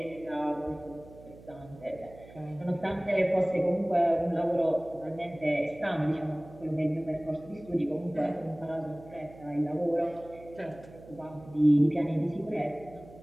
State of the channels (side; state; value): right; noise; hum, 20 dB below the sound